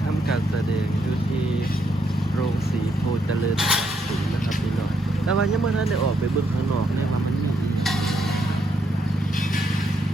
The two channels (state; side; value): normal; both; correlation 0.76